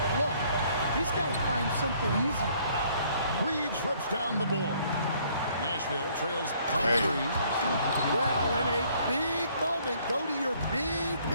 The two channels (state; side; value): inverted; both; correlation -0.63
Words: look, he's got to find something easy. Reeves rips down the board. Nashville trails by 3. Well, in a big moment, go to your big